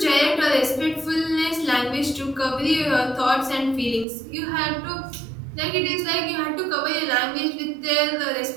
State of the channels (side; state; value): left; drops out; at 4.0 s